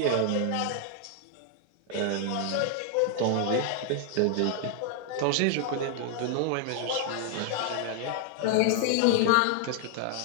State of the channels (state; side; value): different; both; correlation 0.00